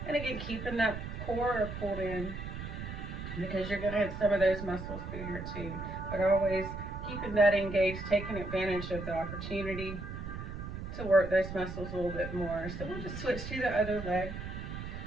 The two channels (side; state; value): right; noise; rumble, 7 dB below the sound